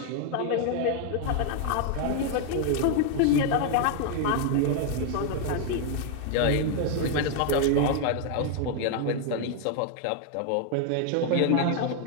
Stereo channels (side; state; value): both; different; correlation 0.00